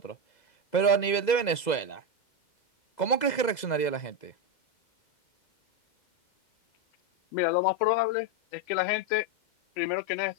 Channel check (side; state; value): right; late; 2.0 ms